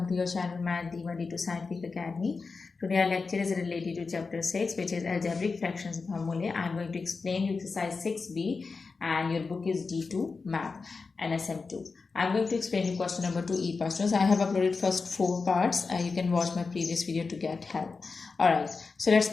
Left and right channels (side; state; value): right; quieter; 4.4 dB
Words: to your channel Math D1 D2 Scientific Academy. Today our lecture is related to chapter 6, which is Algebraic Fractions and Formulae. I am going to explain you exercise 6b and your book is D2 Math NSM2. I am going to explain you question number 2 E part. Students, I have uploaded first 4 parts. You can watch my previous video to get help. Alright, so let's